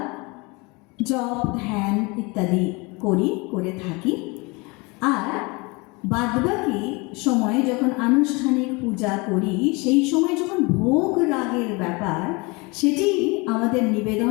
জপ ধ্যান ইত্যাদি করে থাকি। আর বাদবাকি সময়ে যখন আনুষ্ঠানিক পূজা করি, সেই সময় যখন ভোগ রাগের ব্যাপার, সেটি আমাদের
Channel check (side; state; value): right; quieter; 27.1 dB